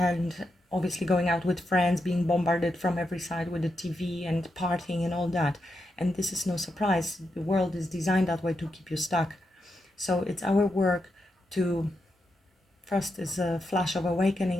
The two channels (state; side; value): normal; both; correlation 0.85